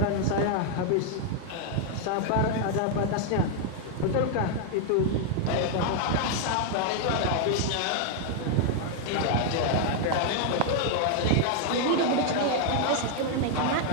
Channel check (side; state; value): both; different; correlation 0.00